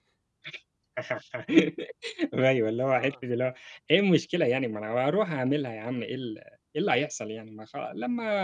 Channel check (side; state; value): both; identical; correlation 1.00